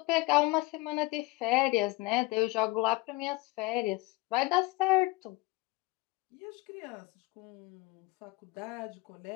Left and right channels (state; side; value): quieter; right; 22.4 dB